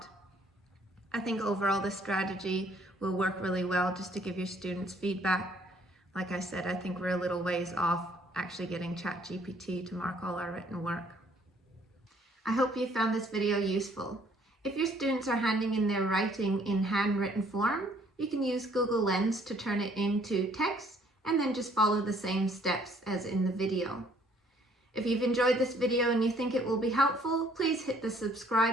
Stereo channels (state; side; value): normal; both; correlation 0.62